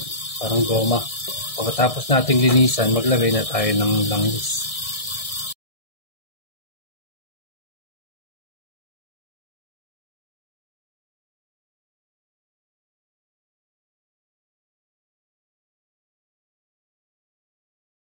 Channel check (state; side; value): late; right; 1.6 ms